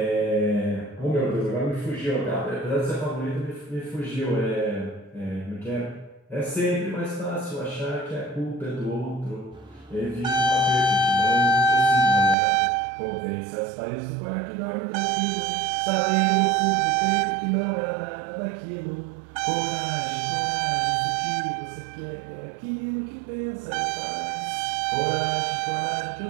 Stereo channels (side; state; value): left; drops out; at 12.4 s